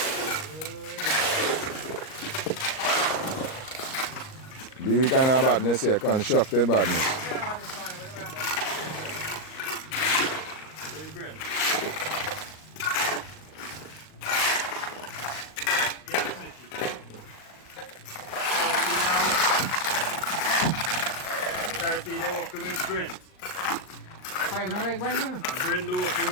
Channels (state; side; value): late; right; 38 ms